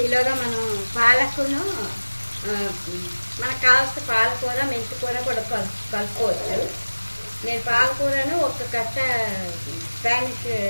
ఈలోగా మనం పాలకును, మనకు కావాల్సిన పాలకూర, మెంతికూర కూడా కలుపుకోవచ్చు. నేను పాలకూరను ఒక కట్ట స్పానిష్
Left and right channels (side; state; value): both; inverted; correlation -1.00